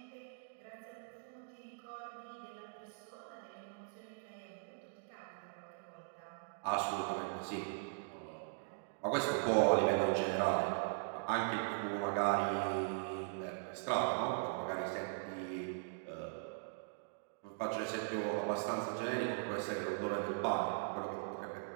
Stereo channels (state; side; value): silent; left; digital silence